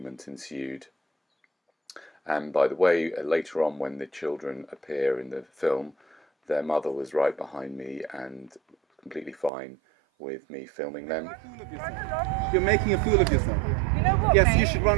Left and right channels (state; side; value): drops out; left; at 9.5 s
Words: ensued. And by the way, later on when the children appear in the film, their mother was right behind me and completely fine with me filming them. You're making a fool of yourself. You know what, Yes, mate? you should run